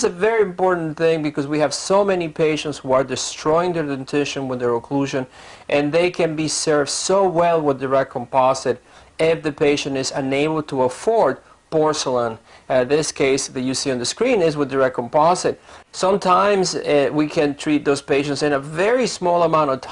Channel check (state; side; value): identical; both; correlation 1.00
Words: a very important thing because we have so many patients who are destroying their dentition with their occlusion, and they can be served so well with direct composite if the patient is unable to afford porcelain. This case that you see on the screen is with direct composite. Sometimes we can treat those patients in a very small amount of